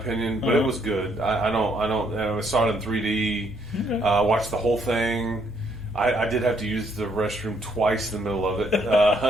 but it was good. I saw it in 3D. Okay. Watched the whole thing. I did have to use the restroom twice in the middle of it.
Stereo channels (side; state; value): both; normal; correlation 0.70